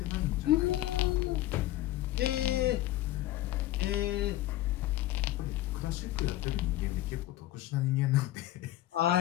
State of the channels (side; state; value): right; quieter; 15.4 dB